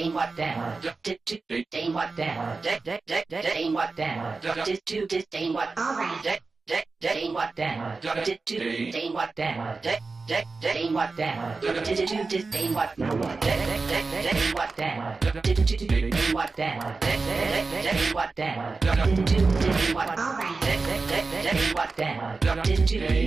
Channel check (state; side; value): quieter; left; 4.0 dB